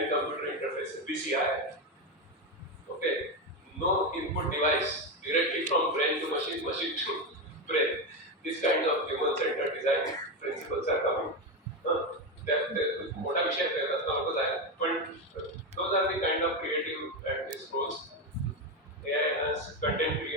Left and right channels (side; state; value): both; normal; correlation 0.12